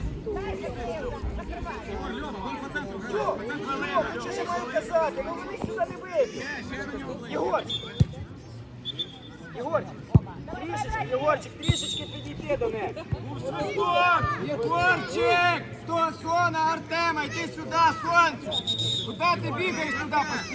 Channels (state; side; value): identical; both; correlation 1.00